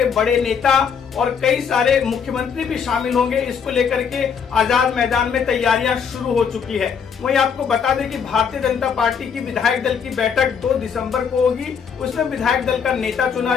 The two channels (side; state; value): right; quieter; 6.8 dB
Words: बड़े नेता और कई सारे मुख्यमंत्री भी शामिल होंगे। इसको लेकर के आजाद मैदान में तैयारियां शुरू हो चुकी है। वहीं आपको बता दें कि भारतीय जनता पार्टी की विधायक दल की बैठक 2 दिसंबर को होगी। उसमें विधायक दल का नेता चुना